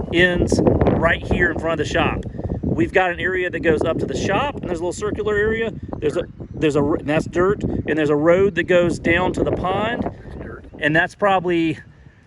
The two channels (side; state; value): both; identical; correlation 1.00